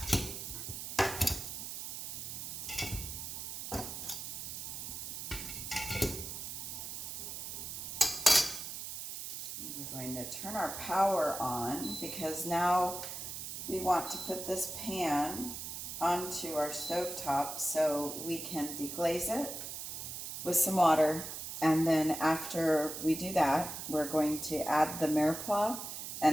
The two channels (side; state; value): right; noise; hiss, 7 dB below the sound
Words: We're going to turn our power on because now we want to put this pan onto our stovetop so we can deglaze it with some water, and then after we do that, we're going to add the mirepoix